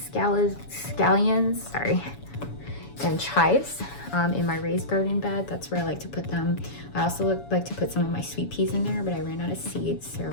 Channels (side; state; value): right; late; 7.1 ms